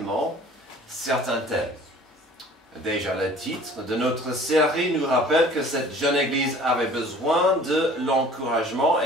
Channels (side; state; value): both; normal; correlation 0.49